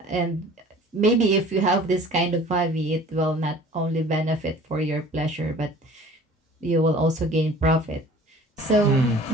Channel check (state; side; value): normal; both; correlation 0.47